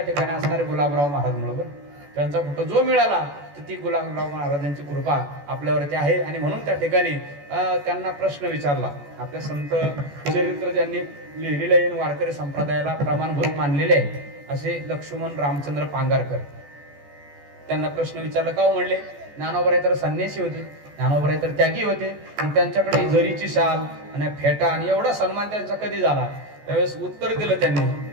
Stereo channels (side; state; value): left; late; 14 ms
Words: ठिकाणी असणारे गुलाबराव महाराज म्हणून. त्यांचा फोटो जो मिळाला तर ती गुलाबराव महाराजांची कृपा आपल्यावरती आहे. आणि म्हणून त्या ठिकाणी त्यांना प्रश्न विचारला. आपल्या संत चरित्र ज्यांनी लिहिलेले आहे, वारकरी संप्रदायाला प्रमाणभूत मानलेले आहे असे लक्ष्मण रामचंद्र पांगारकर, त्यांना प्रश्न विचारला. का म्हणले, ज्ञानोबराय तर संन्यासी होते, ज्ञानोबराय तर त्यागी होते आणि त्यांच्याकडे जरीची शाल आणि फेटा आणि एवढा सन्मान त्यांचा कधी झाला. त्यावेळेस उत्तर दिलं त्यांनी.